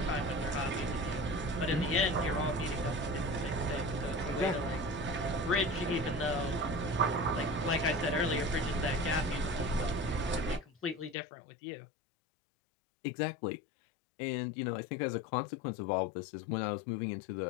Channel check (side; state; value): right; drops out; at 11.2 s